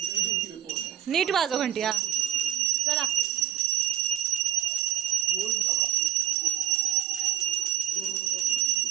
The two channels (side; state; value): left; quieter; 12.9 dB